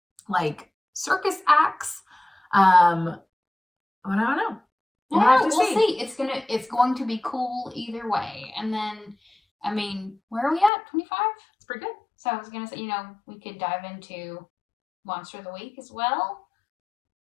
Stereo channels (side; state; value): right; drops out; at 10.7 s